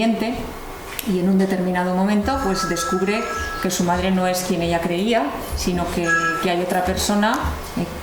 y en un determinado momento pues descubre que su madre no es quien ella creía, sino que hay otra persona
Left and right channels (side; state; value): both; identical; correlation 1.00